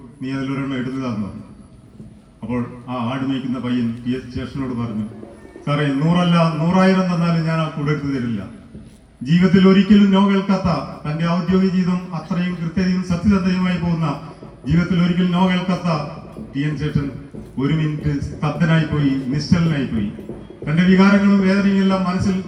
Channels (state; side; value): identical; both; correlation 1.00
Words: നീ അതിലൊരെണ്ണം എടുത്തു തന്നു. അപ്പോൾ ആ ആട് മേയ്ക്കുന്ന പയ്യൻ TN ശേഷനോട് പറഞ്ഞു, സാറേ 100 അല്ല 100,000 തന്നാലും ഞാൻ ആ കൂടെ എടുത്തു തരില്ല. ജീവിതത്തിൽ ഒരിക്കലും നോ കേൾക്കാത്ത, തന്റെ ഔദ്യോഗിക ജീവിതം അത്രയും കൃത്യതയും സത്യസന്ധതയുമായി പോകുന്ന, ജീവിതത്തിൽ ഒരിക്കലും നോ കേൾക്കാത്ത TN ശേഷൻ 1 മിനിറ്റ് സ്തബ്ധനായി പോയി, നിശ്ചലനായി പോയി. തന്റെ വികാരങ്ങളും വേദനയും എല്ലാം മനസ്സിൽ